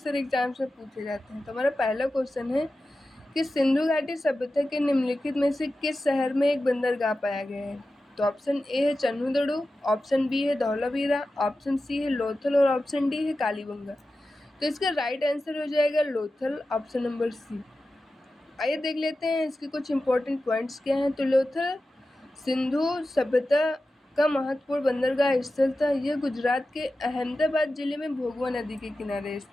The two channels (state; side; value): normal; both; correlation 0.93